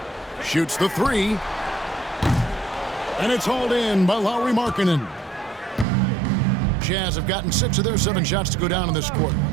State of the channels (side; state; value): left; drops out; at 5.9 s